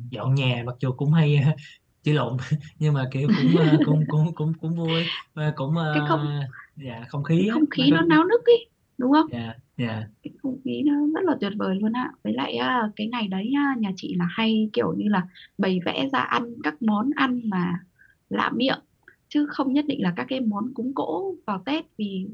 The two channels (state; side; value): identical; both; correlation 1.00